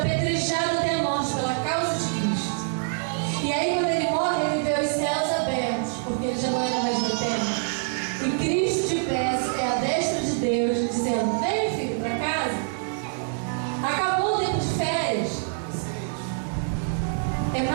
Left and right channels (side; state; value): left; silent; 58 dB below the other